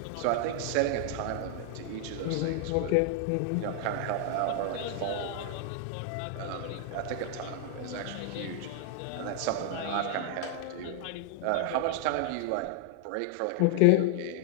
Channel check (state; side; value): different; both; correlation 0.00